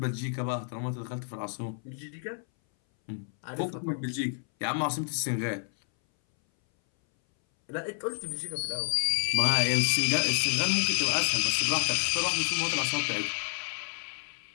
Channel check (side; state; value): right; silent; 58 dB below the other